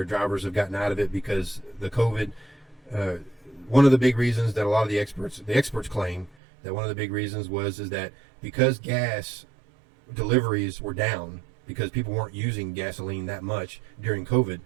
drivers have gotten out of it because the COVID. One of the big reasons that a lot of the experts claim that one of the big reasons is that because gas deliveries were down, because people weren't using gasoline that much during COVID,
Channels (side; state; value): left; drops out; at 6.4 s